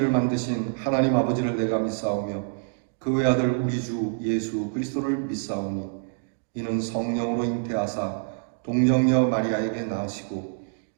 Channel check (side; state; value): left; silent; digital silence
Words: 만드신 하나님 아버지를 내가 믿사오며 그 외아들 우리 주 예수 그리스도를 믿사오니 이는 성령으로 잉태하사 동정녀 마리아에게 낳으시고